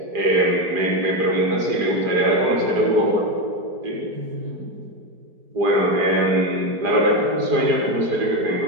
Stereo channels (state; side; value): late; left; 4.9 ms